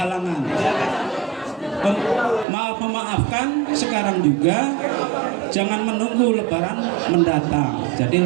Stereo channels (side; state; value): left; drops out; at 2.5 s